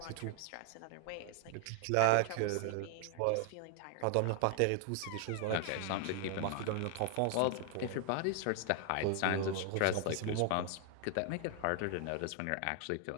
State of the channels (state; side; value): different; both; correlation 0.00